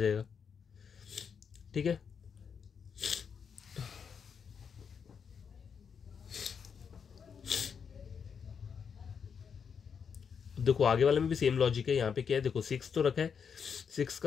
ठीक है, देखो आगे वाले में भी सेम लॉजिक है। यहाँ पे क्या है, देखो 6 तो रखा है, 6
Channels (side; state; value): right; quieter; 6.7 dB